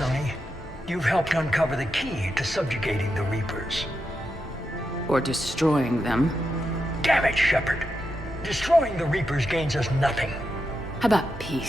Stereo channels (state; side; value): normal; both; correlation 0.86